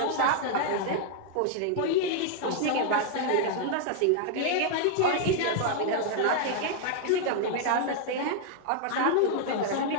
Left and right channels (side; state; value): both; different; correlation 0.00